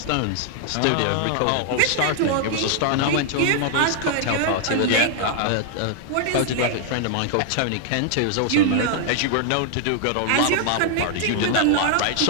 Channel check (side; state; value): both; different; correlation 0.00